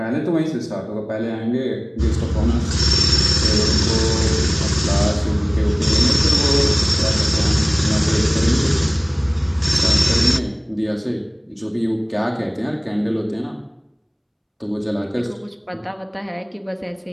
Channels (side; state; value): both; identical; correlation 1.00